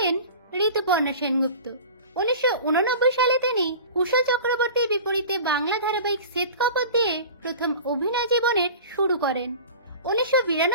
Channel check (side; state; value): both; inverted; correlation -0.38